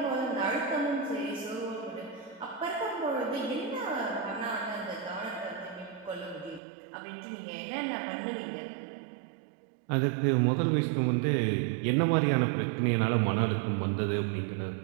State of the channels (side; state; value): left; drops out; at 6.6 s